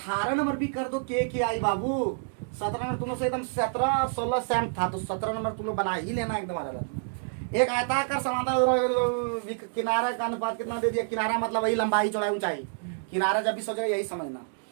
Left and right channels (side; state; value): left; silent; digital silence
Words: नंबर भी कर दो के आई बाबू। 17 नंबर तुम लोग से एकदम 17 और 16 सेम था, तो 17 नंबर तुम लोग बना ही लेना एकदम अलग। एक आयताकार समांतर किनारा का अनुपात कितना दे दिया, किनारा मतलब वही लंबाई चौड़ाई ऊंचाई, किनारा जब भी सोचो यही समझना।